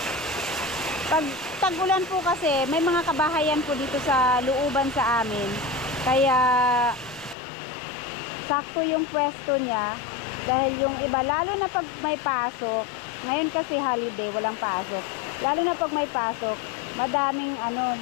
Pag tag-ulan po kasi, may mga kabahayan po dito sa looban sa amin. Kaya sakto yung pwesto niya. Dahil yung iba, lalo na pag may pasok, ngayon kasi holiday, walang pasok. Lalo na pag may pasok,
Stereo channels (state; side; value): drops out; right; at 7.4 s